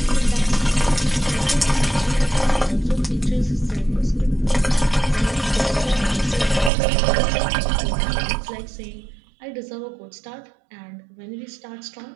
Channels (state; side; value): drops out; left; at 6.7 s